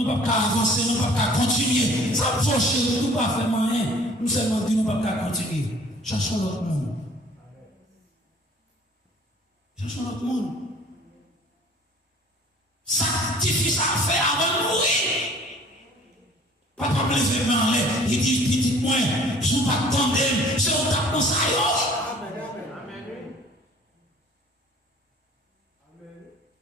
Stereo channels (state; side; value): normal; both; correlation 0.52